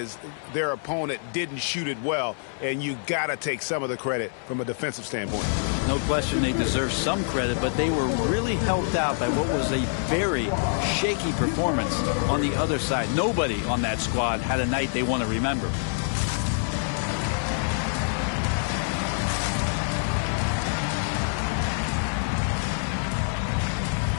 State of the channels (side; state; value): right; silent; 61 dB below the other